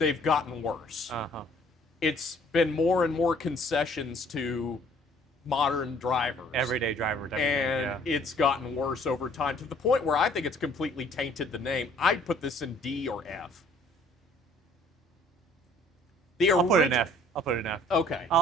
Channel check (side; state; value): both; normal; correlation 0.57